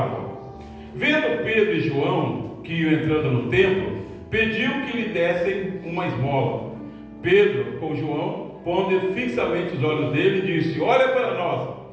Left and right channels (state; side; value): identical; both; correlation 1.00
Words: Vendo Pedro e João que iam entrando no templo, pediu que lhe dessem uma esmola. Pedro, com João, pondo fixamente os olhos dele, disse: olha para nós.